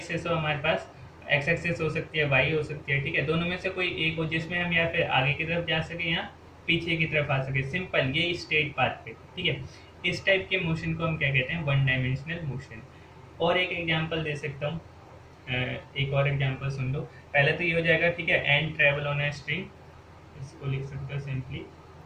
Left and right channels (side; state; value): both; identical; correlation 1.00